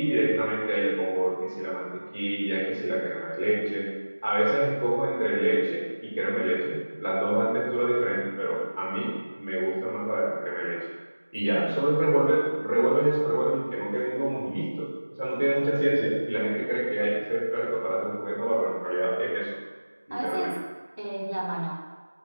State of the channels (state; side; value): inverted; both; correlation -1.00